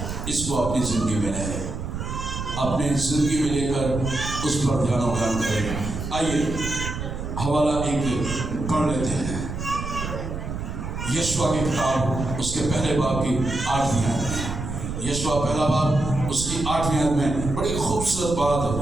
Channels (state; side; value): noise; right; rumble, 6 dB below the sound